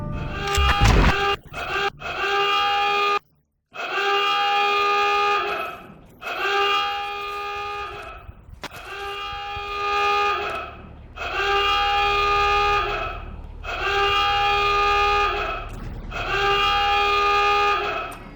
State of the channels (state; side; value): identical; both; correlation 1.00